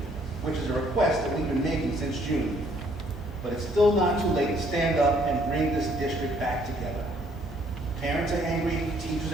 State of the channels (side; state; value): both; normal; correlation 0.65